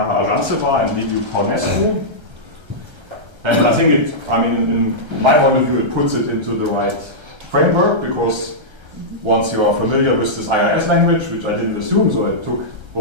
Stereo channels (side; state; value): left; late; 1.3 ms